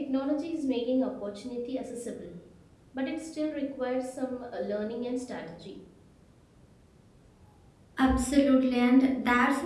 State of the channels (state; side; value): identical; both; correlation 1.00